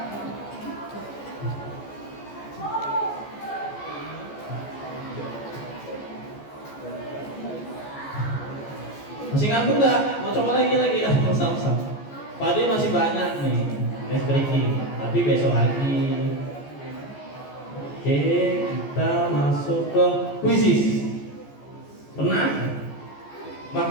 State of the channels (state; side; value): late; right; 14 ms